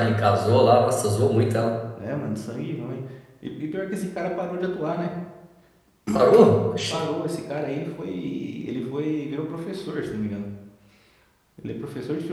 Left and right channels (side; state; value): both; identical; correlation 1.00